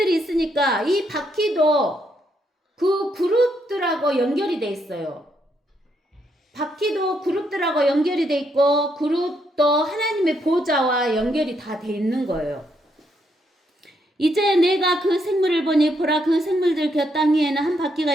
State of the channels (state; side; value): normal; both; correlation 0.76